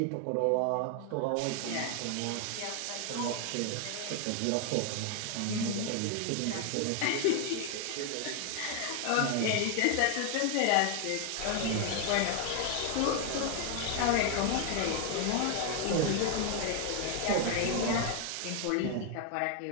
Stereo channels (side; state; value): both; different; correlation 0.00